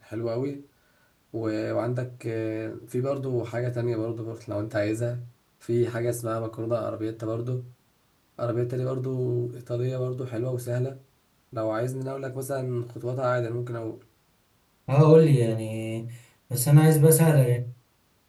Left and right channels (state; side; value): identical; both; correlation 1.00